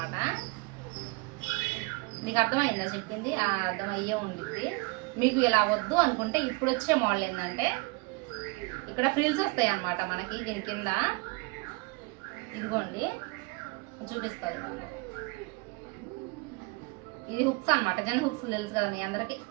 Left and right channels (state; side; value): quieter; left; 27.1 dB